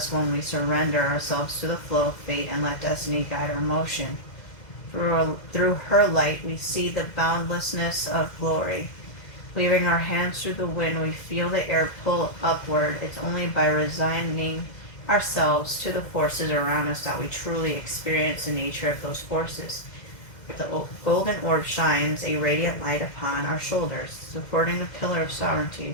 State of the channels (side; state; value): right; late; 2.0 ms